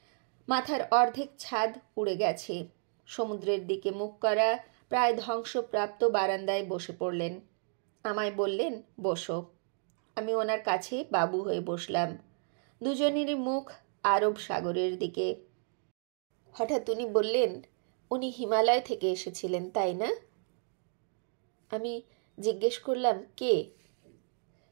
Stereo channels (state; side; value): silent; left; 56 dB below the other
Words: মাথার অর্ধেক ছাদ উড়ে গেছে। সমুদ্রের দিকে মুখ করা প্রায় ধ্বংসপ্রাপ্ত বারান্দায় বসে পড়লেন। আমায় বললেন, বসো। আমি ওনার কাছে বাবু হয়ে বসলাম। দুজনেরই মুখ আরব সাগরের দিকে। হঠাৎ উনি বললেন, উনি হিমালয় থেকে এসেছিলেন, তাই না? আমি জিজ্ঞেস করলাম, কে?